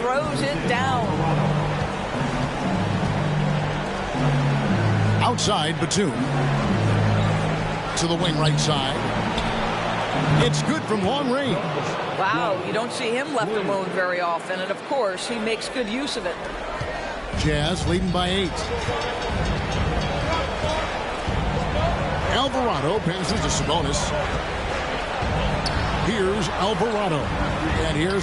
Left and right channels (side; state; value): both; identical; correlation 1.00